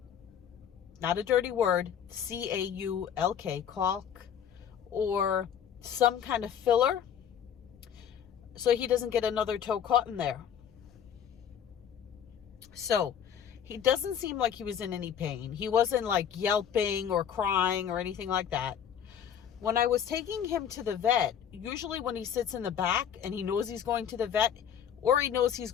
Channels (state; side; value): quieter; right; 8.7 dB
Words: not a dirty word, C-A-U-L-K, caulk, or some kind of filler so he doesn't get another toe caught in there. So he doesn't seem like he was in any pain. He wasn't like yelping or crying or anything like that. When I was taking him to the vet, usually when he sits in the back and he knows he's going to the vet, or he knows he's